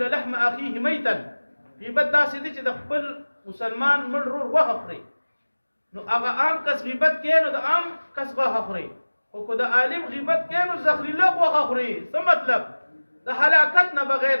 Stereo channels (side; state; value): both; inverted; correlation -1.00